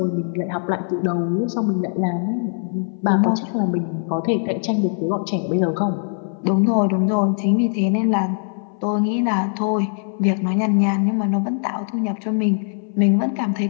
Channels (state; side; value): silent; right; 60 dB below the other